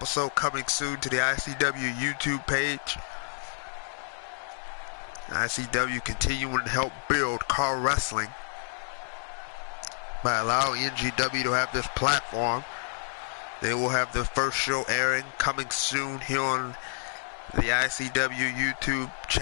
coming soon to the ICW YouTube page. ICW continuing to help build car wrestling by allowing NGW to have this platform. They will have their first show airing coming soon here on the ICW YouTube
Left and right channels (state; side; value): silent; right; digital silence